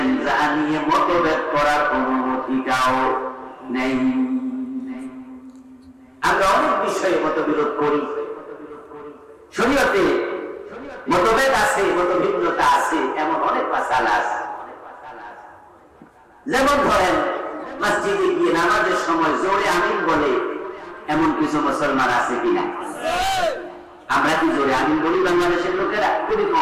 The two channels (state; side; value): identical; both; correlation 1.00